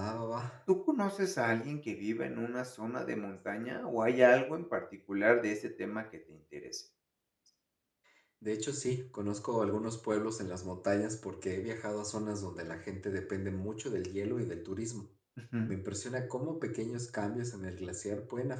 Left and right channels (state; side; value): identical; both; correlation 1.00